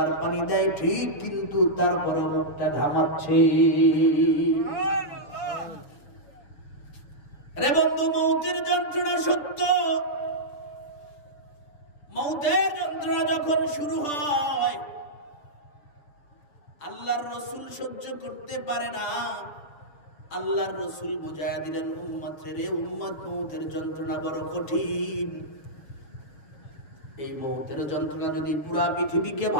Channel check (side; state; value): right; late; 6.6 ms